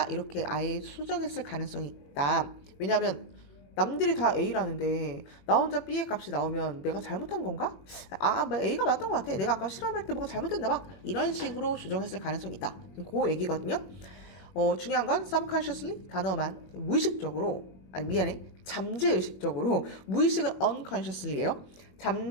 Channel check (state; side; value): late; right; 21 ms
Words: 이렇게 아예 수정했을 가능성이 있다. 왜냐하면 남들이 다 A라는데 나 혼자 B의 값이 나오면 내가 잘못한 건가? 뭐 A가 맞던 것 같아. 내가 아까 실험할 때 뭐가 잘못됐나 봐. 이런 식으로 조정했을 가능성이 있다. 그 얘기거든요. 중요한 건 subconsciously 단어만 무의식적으로 미안해. 잠재의식적으로, 무의식은 unconsciously예요.